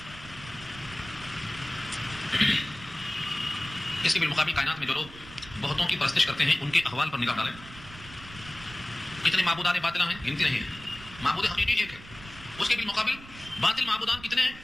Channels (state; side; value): noise; right; rumble, 17 dB below the sound